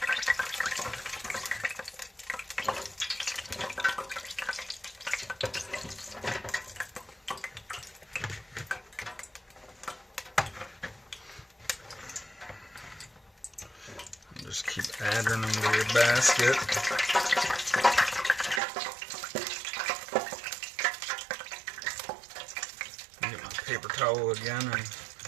Just keep adding them to your basket. Get my paper towel again and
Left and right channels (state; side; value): drops out; left; at 18.6 s